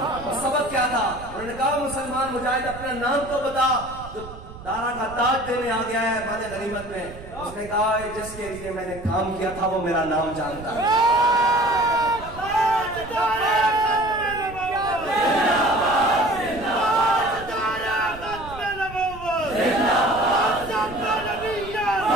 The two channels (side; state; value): right; noise; rumble, 15 dB below the sound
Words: तो सबक क्या था? उन्होंने कहा मुसलमान मुजाहिद अपना नाम तो बता, जो दारा का ताज देने आ गया है माले गनीमत में। उसने कहा जिसके लिए मैंने काम किया था वो मेरा नाम जानता है।